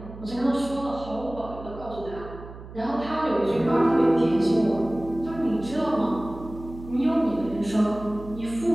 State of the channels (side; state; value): right; noise; hum, 15 dB below the sound